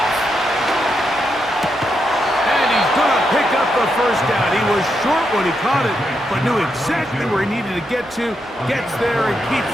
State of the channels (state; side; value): normal; both; correlation 0.83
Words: And he's going to pick up the first down. He was short when he caught it, but knew exactly where he needed to get to. Gets there and keeps